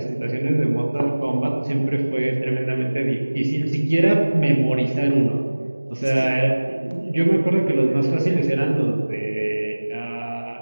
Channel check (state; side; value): inverted; both; correlation -1.00